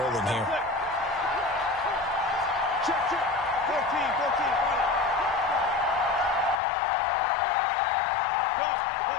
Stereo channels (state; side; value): drops out; right; at 6.6 s